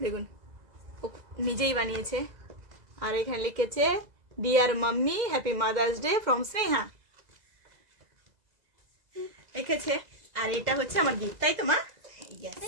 দেখুন ও নিজেই বানিয়েছে। আর এখানে লিখেছে dear mummy happy mother's day from Sneha লিখেছে। আর এটা হচ্ছে আমার গিফট, তাই তো মা?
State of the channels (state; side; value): late; left; 2.0 ms